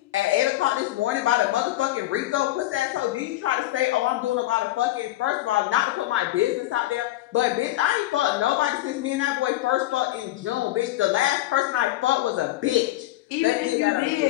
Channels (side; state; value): right; quieter; 16.2 dB